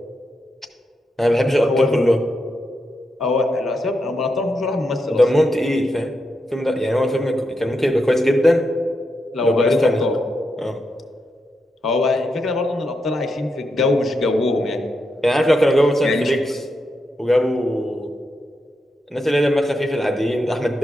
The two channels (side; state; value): both; normal; correlation 0.85